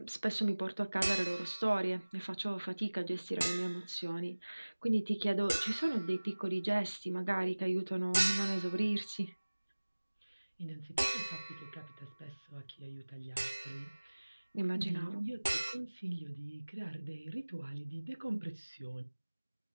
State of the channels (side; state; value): both; inverted; correlation -1.00